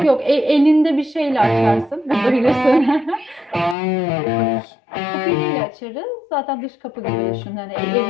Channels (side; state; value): right; drops out; at 3.8 s